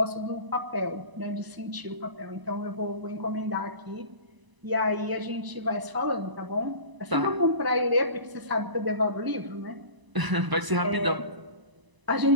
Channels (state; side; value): late; left; 1.0 ms